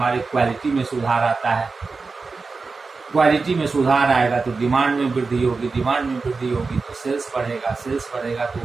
क्वालिटी में सुधार आता है। क्वालिटी में सुधार आएगा तो डिमांड में वृद्धि होगी, डिमांड में वृद्धि होगी तो सेल्स बढ़ेगा, सेल्स बढ़ेगा तो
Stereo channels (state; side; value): quieter; left; 4.2 dB